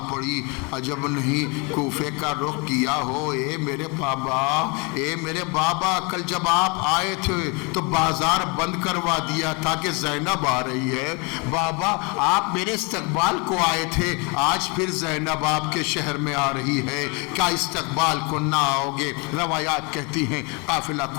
پڑی. عجب نہیں کوفے کا رخ کیا ہو. اے میرے بابا، اے میرے بابا، کل جب آپ آئے تھے تو بازار بند کروا دیا تھا کہ زینب آ رہی ہے. بابا آپ میرے استقبال کو آئے تھے، آج پھر زینب آپ کے شہر میں آ رہی ہے، کیا استقبال کو نہ آؤ گے؟ روایات کہتی ہیں قافلہ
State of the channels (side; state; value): right; quieter; 30.6 dB